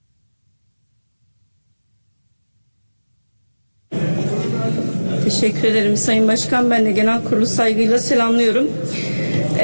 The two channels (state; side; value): inverted; both; correlation -1.00